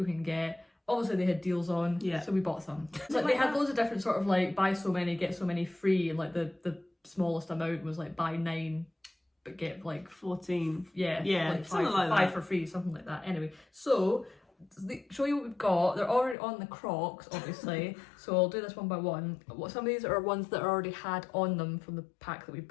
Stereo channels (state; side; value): drops out; right; at 16.4 s